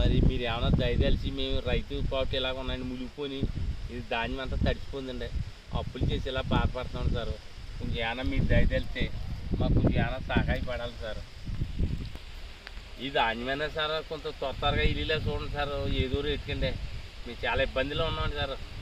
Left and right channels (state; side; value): identical; both; correlation 1.00